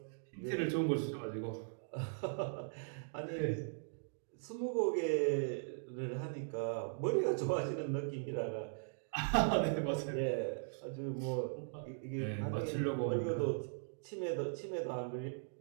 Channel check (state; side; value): silent; left; digital silence